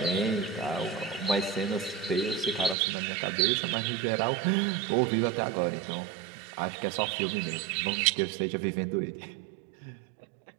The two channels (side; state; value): left; drops out; at 2.8 s